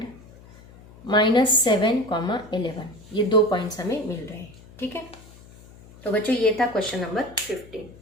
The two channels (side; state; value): left; noise; hum, 22 dB below the sound